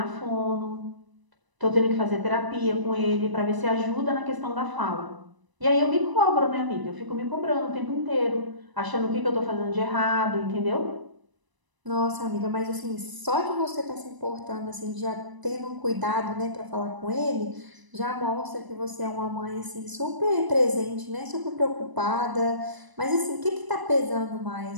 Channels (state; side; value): late; left; 1.0 ms